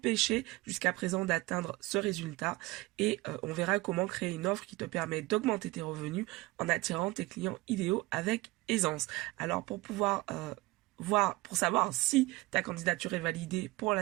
jusqu'à présent d'atteindre ce résultat et on verra comment créer une offre qui te permet d'augmenter tes revenus en attirant tes clients idéaux avec aisance. Alors pour savoir si ta candidature est validée pour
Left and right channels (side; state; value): left; quieter; 21.2 dB